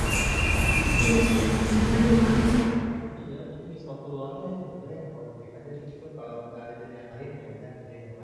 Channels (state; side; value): identical; both; correlation 1.00